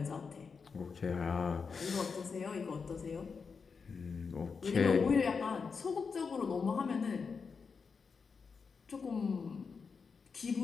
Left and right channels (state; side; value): quieter; right; 5.4 dB